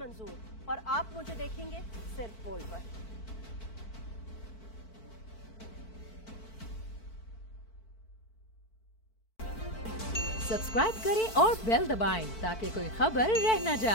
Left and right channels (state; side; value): late; right; 4.5 ms